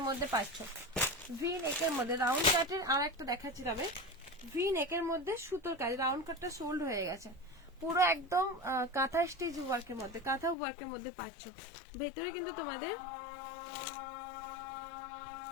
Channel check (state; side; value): drops out; right; at 10.6 s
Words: মধ্যে পাচ্ছ। ভি নেকের মধ্যে রাউন্ড কাটের, আর একটা দেখাচ্ছি তবে, ভি নেকের মধ্যে সুতোর কাজ, রাউন্ড কাটটা সোল্ড হয়ে গেছে পুরো একদম কাঁথা স্টিচ ওয়ার্কের মধ্যে, কাঁথা ওয়ার্কের মধ্যে পাচ্ছ। ভেতরে কিন্তু তোমাদের